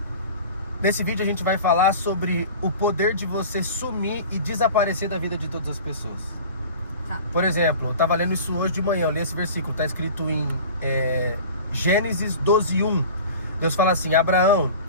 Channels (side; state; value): both; inverted; correlation -0.39